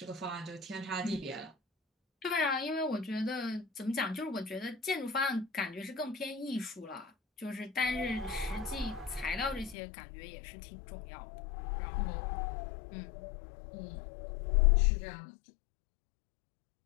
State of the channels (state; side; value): drops out; right; at 9.8 s